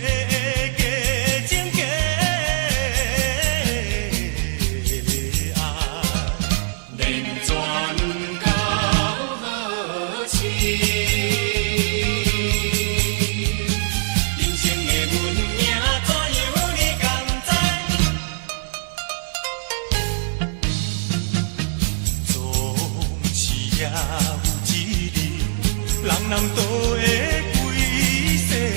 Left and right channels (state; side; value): silent; left; 60 dB below the other